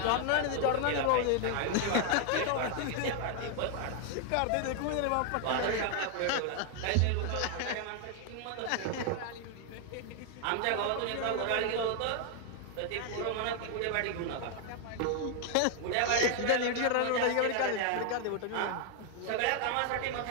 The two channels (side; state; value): both; different; correlation 0.00